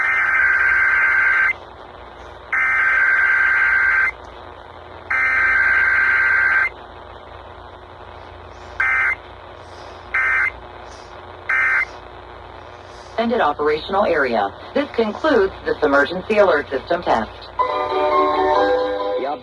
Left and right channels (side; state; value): both; identical; correlation 1.00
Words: Extended operational area. This concludes this emergency alert system test.